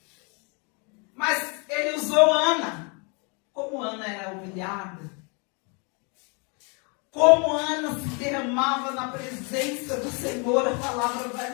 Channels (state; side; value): quieter; right; 33.8 dB